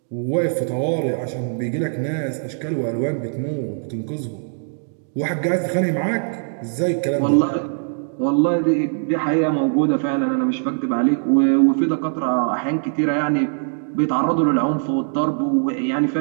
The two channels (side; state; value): left; silent; digital silence